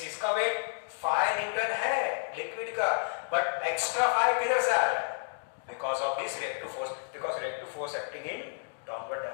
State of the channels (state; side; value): silent; right; digital silence